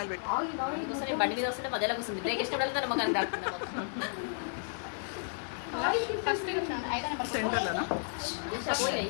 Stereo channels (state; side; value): silent; right; digital silence